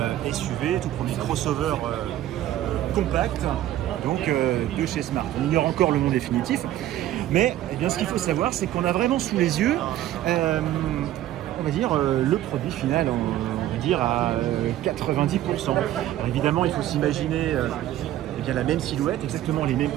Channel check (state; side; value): quieter; left; 13.3 dB